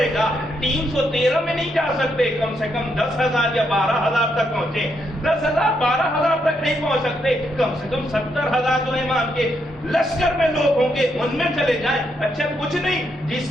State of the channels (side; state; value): both; normal; correlation 0.78